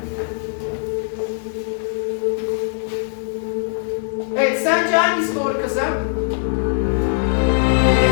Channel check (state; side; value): silent; right; digital silence